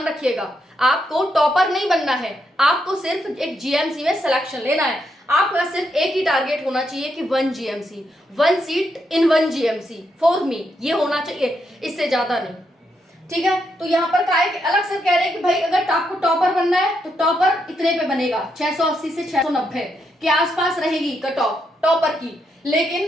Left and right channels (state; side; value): normal; both; correlation 0.80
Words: रखिएगा। आपको टॉपर नहीं बनना है, आपको सिर्फ एक जीएमसी में सिलेक्शन लेना है। आपका सिर्फ एक ही टारगेट होना चाहिए कि 1 GMC, 1 seat in 1 GMC for me, ये होना चाहिए, इससे ज्यादा नहीं। ठीक है, तो यहाँ पर क्या है कि अलग से कह रहे हैं कि भाई अगर आपको टॉपर बनना है तो टॉपर इतने पे बनेगा, 680 से 690 के आसपास रहेगी कट ऑफ टॉपर की।